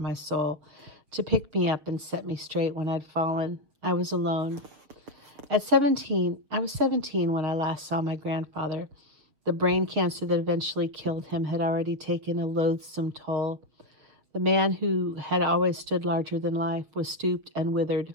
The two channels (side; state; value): left; late; 6.9 ms